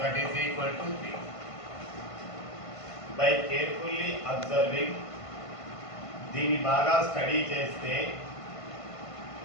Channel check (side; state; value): right; late; 1.5 ms